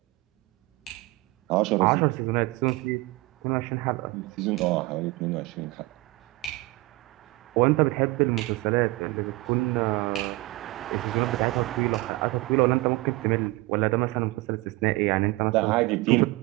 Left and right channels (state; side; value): quieter; left; 21.5 dB